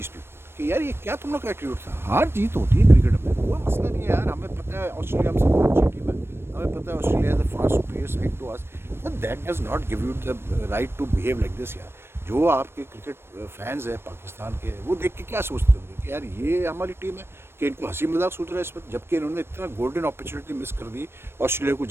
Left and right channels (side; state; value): left; late; 0.12 ms